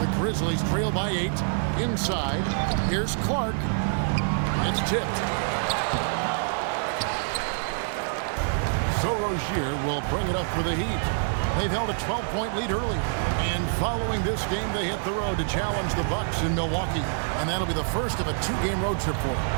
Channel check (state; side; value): silent; left; digital silence